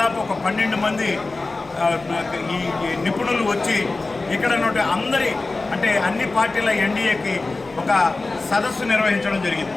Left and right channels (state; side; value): quieter; right; 3.4 dB